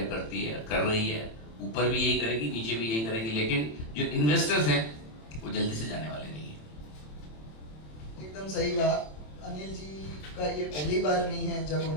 करती है, कर रही है, ऊपर भी यही करेगी, नीचे भी यही करेगी, लेकिन जो इन्वेस्टर्स हैं वो जल्दी से जाने वाले नहीं है। एकदम सही कहा। अनिल जी का ये पहली बार नहीं है जब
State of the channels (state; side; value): late; right; 26 ms